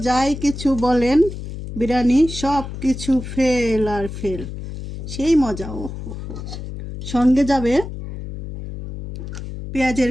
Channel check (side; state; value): left; noise; hum, 9 dB below the sound